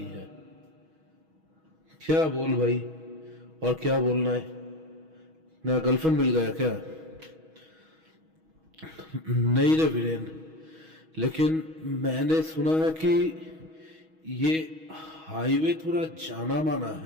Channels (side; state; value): left; late; 6.3 ms